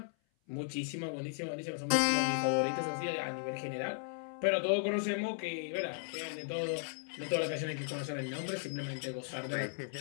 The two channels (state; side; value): silent; right; 54 dB below the other